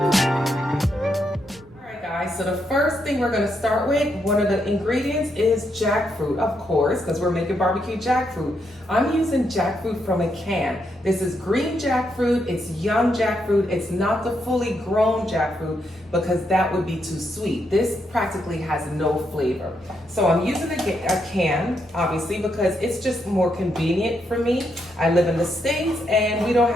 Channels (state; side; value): normal; both; correlation 0.79